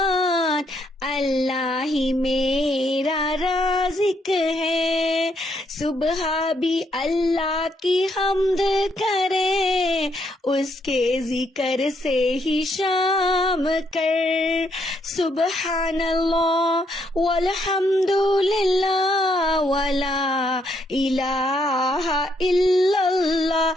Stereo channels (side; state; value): both; normal; correlation 0.74